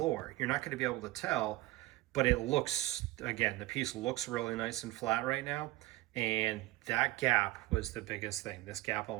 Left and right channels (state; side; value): quieter; left; 18.4 dB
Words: you're not going to be able to tell, but it looks, again, the piece looks really nice and flat right now. And that gap was the biggest thing, this gap